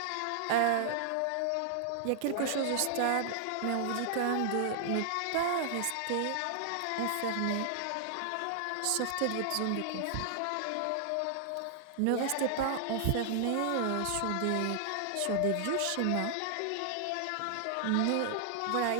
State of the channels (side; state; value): both; different; correlation -0.01